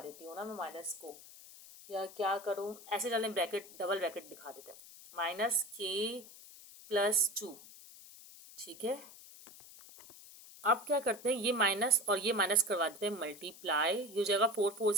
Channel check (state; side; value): noise; left; hiss, 18 dB below the sound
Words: देती हूँ ना मैं माइनस को, या क्या करूँ, ऐसे डालने ब्रैकेट, डबल ब्रैकेट दिखा देते हैं, -k+2। ठीक है, अब क्या करते हैं, ये माइनस और ये माइनस करवा देते हैं मल्टीप्लाई। ये हो जाएगा 4 4